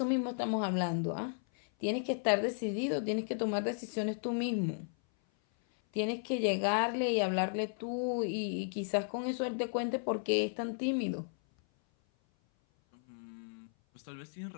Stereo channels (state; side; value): silent; right; 55 dB below the other